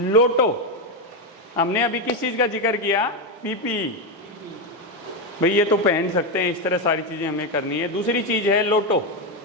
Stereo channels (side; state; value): both; normal; correlation 0.08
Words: हमने अभी किस चीज़ का जिक्र किया? पीपीई। भाई ये तो पहन सकते हैं, इस तरह सारी चीज़ें हमें करनी है। दूसरी चीज़ है लोटो।